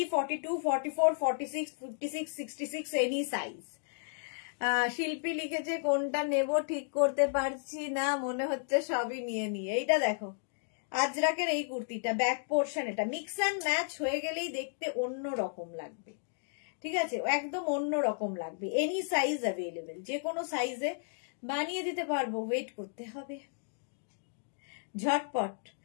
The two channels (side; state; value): right; silent; digital silence